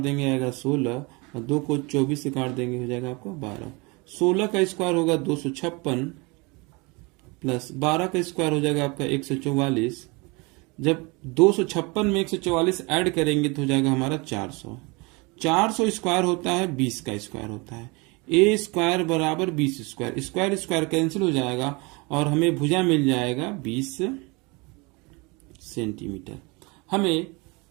आएगा 16, और 2 को 24 से काट देंगे हो जाएगा आपका 12। 16 का स्क्वायर होगा 256 प्लस 12 का स्क्वायर हो जाएगा आपका 144। जब 256 में 144 ऐड करेंगे तो हो जाएगा हमारा 400। 400 स्क्वायर होता है 20 का स्क्वायर होता है। ए स्क्वायर बराबर 20 स्क्वायर, स्क्वायर स्क्वायर कैंसिल हो जाएगा और हमें भुजा मिल जाएगा 20 सेंटीमीटर। हमें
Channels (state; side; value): quieter; left; 27.4 dB